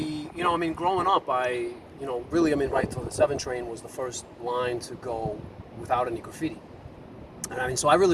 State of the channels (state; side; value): identical; both; correlation 1.00